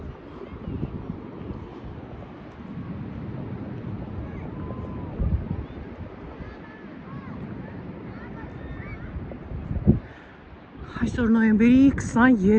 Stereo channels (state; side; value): identical; both; correlation 1.00